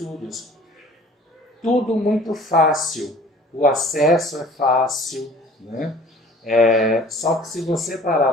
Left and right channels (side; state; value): both; normal; correlation 0.48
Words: Tudo muito fácil, o acesso é fácil, né? Só que se você parar